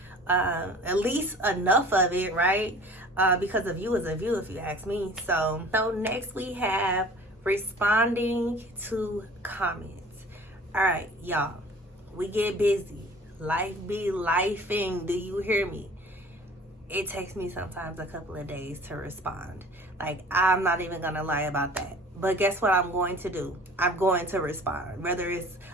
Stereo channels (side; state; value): both; normal; correlation 0.46